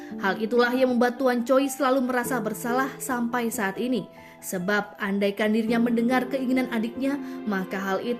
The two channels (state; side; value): identical; both; correlation 1.00